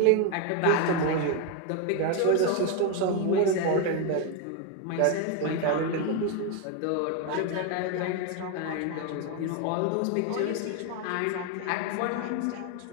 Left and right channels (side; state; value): both; different; correlation 0.01